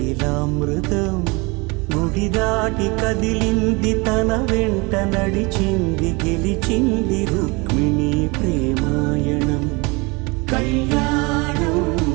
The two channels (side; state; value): left; quieter; 27.0 dB